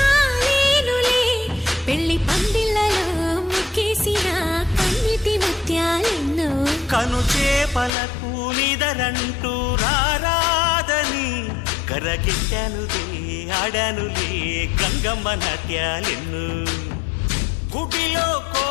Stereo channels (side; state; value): right; drops out; at 7.9 s